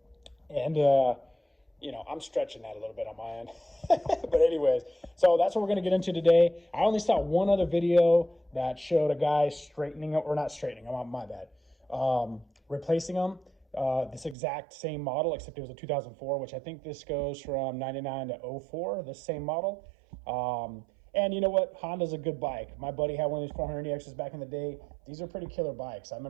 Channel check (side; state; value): left; drops out; at 14.4 s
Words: And, you know, I'm stretching that a little bit on my end. But anyways, so that's what we're going to get into today. I only saw one other video that showed a guy straightening, or not straightening, my bad, replacing them. This exact same model, except it was a 2004, which I think this goes from 99 to 04, the same model. And you know what? Honda's a good bike. My buddy had one of these 400EXs back in the day. These are pretty killer bikes. I